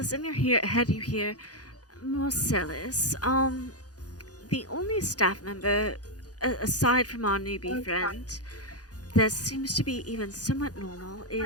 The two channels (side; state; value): right; late; 0.68 ms